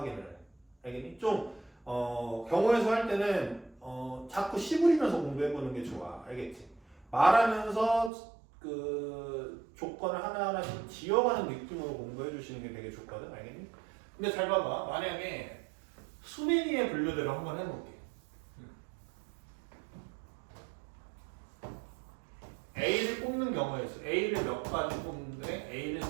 해. 알겠니? 좀 경우의 수 할 때는 자꾸 씨부리면서 공부해보는 게 좋아. 알겠지? 말하면서 그 조건을 하나하나씩 지어가는 느낌으로 공부해 주시는 게 되게 좋거든. 알겠니? 근데 잘 봐봐. 만약에 수민이의 분류대로 한번 해볼게. A를 뽑는 경우에 있어. A를 몇 가지 뽑는데 A를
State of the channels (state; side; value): drops out; left; at 8.1 s